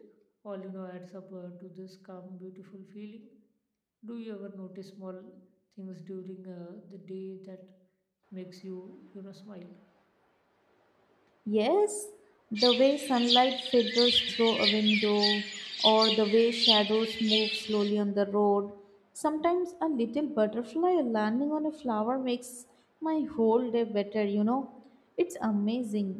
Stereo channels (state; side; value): identical; both; correlation 1.00